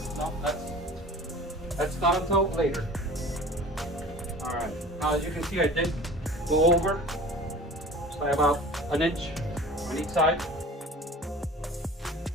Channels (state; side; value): normal; both; correlation 0.42